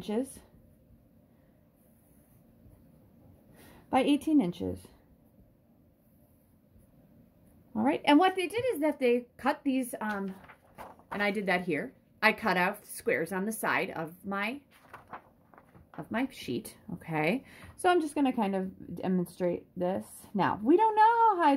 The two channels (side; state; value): both; identical; correlation 1.00